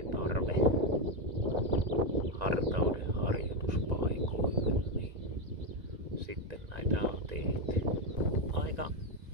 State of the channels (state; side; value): late; left; 2.0 ms